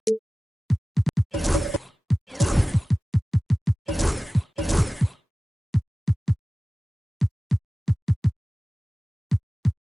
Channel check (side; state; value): both; normal; correlation 0.97